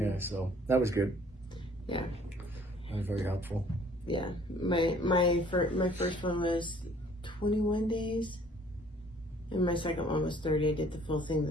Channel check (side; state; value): both; normal; correlation 0.57